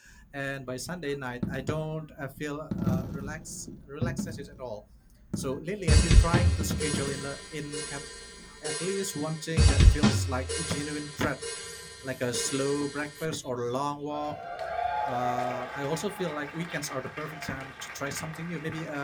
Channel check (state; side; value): identical; both; correlation 1.00